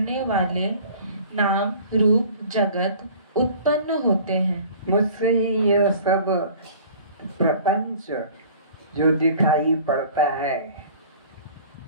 वाले नाम रूप जगत उत्पन्न होते हैं। मुझसे ही यह सब प्रपंच जो दिखाई पड़ता है,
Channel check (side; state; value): both; inverted; correlation -0.47